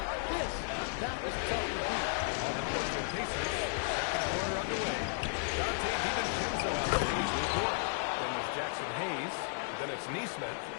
this, that is tough to beat. On the court for Pacers, second quarter underway. Dante DiVincenzo out there leads the court. Then there's Jackson Hayes, then it's Neesmith,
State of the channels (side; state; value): right; silent; digital silence